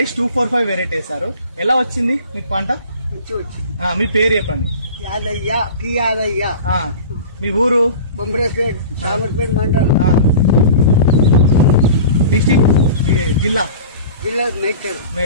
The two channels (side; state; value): both; inverted; correlation -0.38